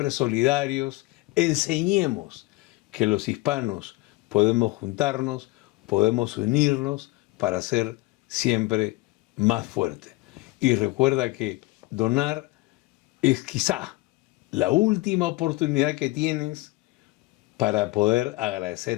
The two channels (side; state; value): right; quieter; 21.8 dB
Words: solidarios, enseñemos que los hispanos podemos juntarnos, podemos unirnos para ser siempre más fuertes. Y recuerda que donar es quizá la última oportunidad que tienes para poder